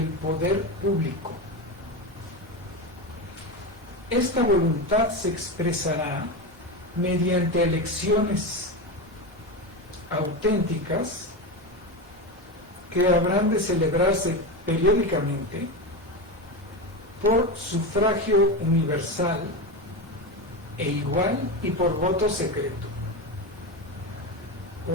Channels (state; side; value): normal; both; correlation 0.18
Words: poder público. Esta voluntad se expresará mediante elecciones auténticas que habrán de celebrarse periódicamente por sufragio universal e igual y por voto secreto,